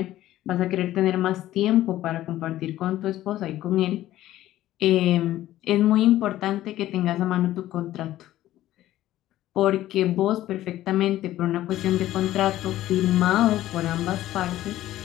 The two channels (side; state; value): right; quieter; 14.3 dB